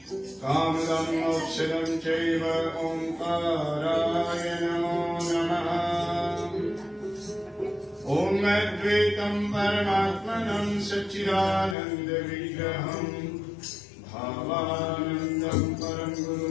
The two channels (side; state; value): right; drops out; at 11.8 s